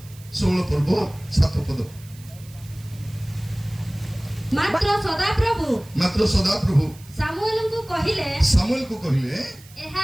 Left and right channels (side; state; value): right; noise; hiss, 23 dB below the sound